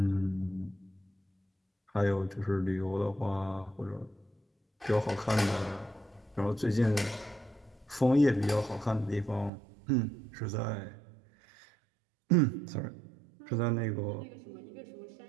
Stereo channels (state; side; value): drops out; left; at 9.5 s